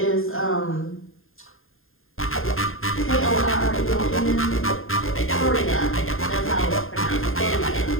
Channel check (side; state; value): right; late; 0.60 ms